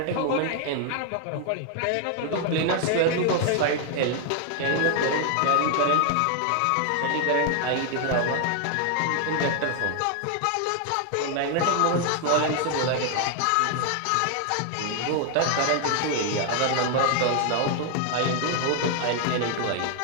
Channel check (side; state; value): both; different; correlation 0.00